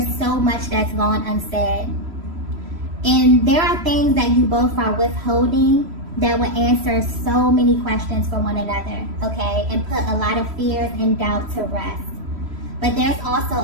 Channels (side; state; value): left; late; 3.1 ms